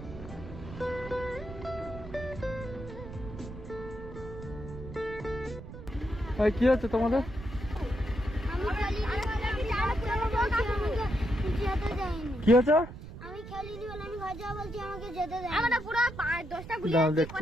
কি হচ্ছে তোমাদের? কি হচ্ছে? আমি খেলিনি বলে আমি ঘর যাবো বলছি, আমাকে যেতে দেয়। আমরা পুরো 10টা গুলি দাও আছে, দেখছি।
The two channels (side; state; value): right; noise; rumble, 12 dB below the sound